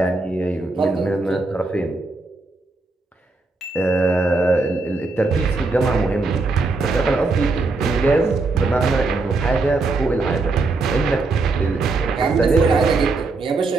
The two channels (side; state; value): left; quieter; 3.6 dB